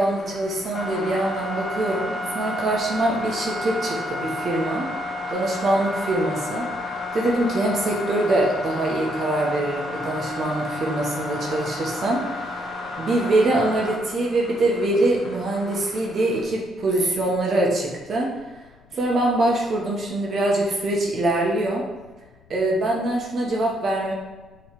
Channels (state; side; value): noise; left; rumble, 28 dB below the sound